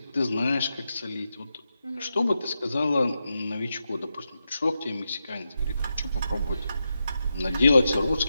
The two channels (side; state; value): both; inverted; correlation -0.87